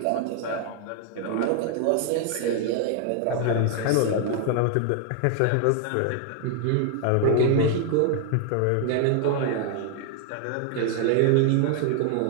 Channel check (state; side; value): different; both; correlation 0.00